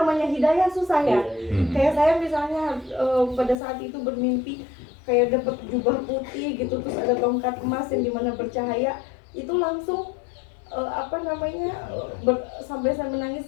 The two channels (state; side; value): drops out; right; at 3.6 s